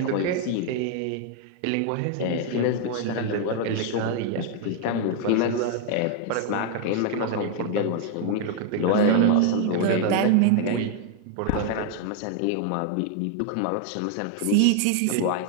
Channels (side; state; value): both; different; correlation 0.00